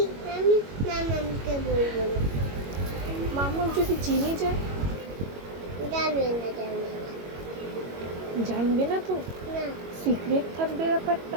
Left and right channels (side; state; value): left; late; 22 ms